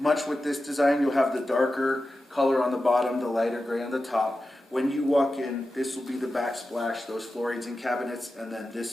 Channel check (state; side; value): normal; both; correlation 0.92